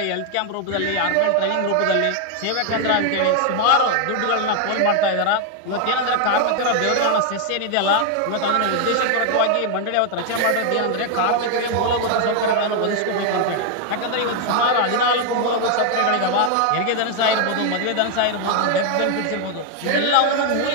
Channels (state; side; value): different; both; correlation 0.00